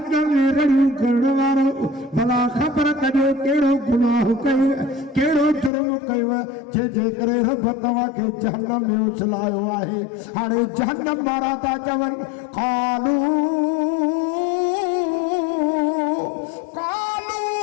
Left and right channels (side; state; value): right; drops out; at 5.7 s